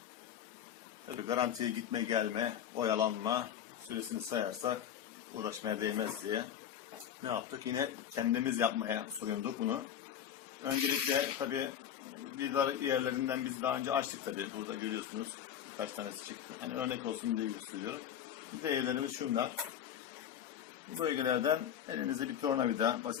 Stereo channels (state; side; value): quieter; right; 9.6 dB